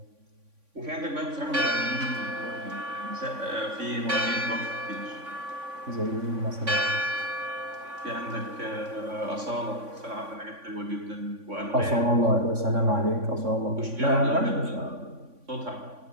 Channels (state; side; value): late; left; 3.5 ms